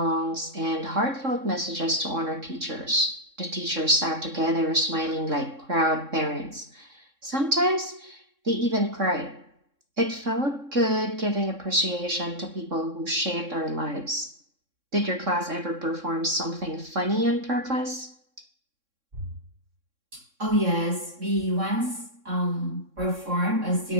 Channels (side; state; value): left; late; 3.6 ms